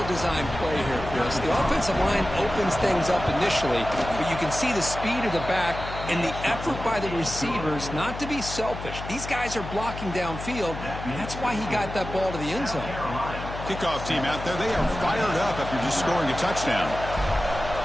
play here, Chris. The offensive line opens things up initially, but you can see the speed of the back and the effort by the receivers not to be selfish. These guys are blocking downfield, and that's why he got that ball to the end zone. Kickoff team out there, they are fired up after just scoring a touchdown.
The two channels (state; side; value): noise; left; hum, 9 dB below the sound